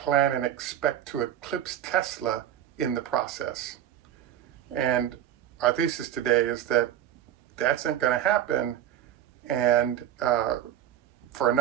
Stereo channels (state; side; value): quieter; left; 11.3 dB